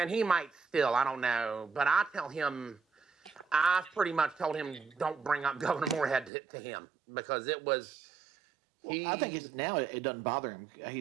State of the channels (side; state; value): left; drops out; at 6.3 s